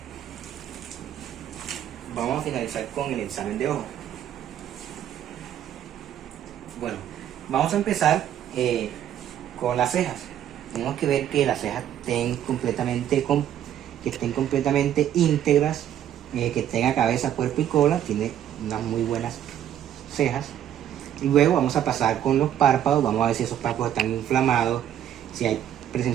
vamos a finalizar con el examen de ojo. Bueno, vamos a empezar con las cejas. Tenemos que ver que las cejas estén completamente íntegras, que tenga cabeza, cuerpo y cola. Tiene unas muy buenas cejas. Y luego vamos a pasar con los párpados. Vamos a ver si esos párpados están inflamados, si hay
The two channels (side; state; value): left; quieter; 10.6 dB